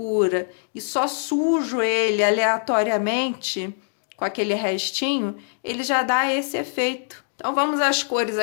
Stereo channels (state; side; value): silent; right; digital silence